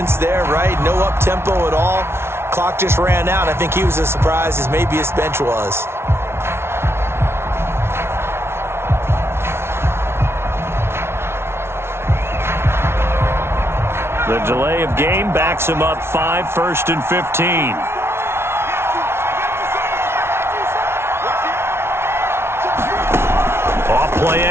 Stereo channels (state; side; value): late; left; 0.12 ms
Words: there, right? No up-tempo at all. Clock just ran out. I think he was as surprised as maybe his bench was. The delay of game backs him up 5, 1st and 15. Play